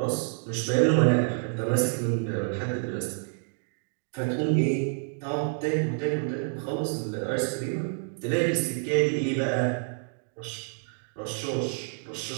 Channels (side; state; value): left; silent; 59 dB below the other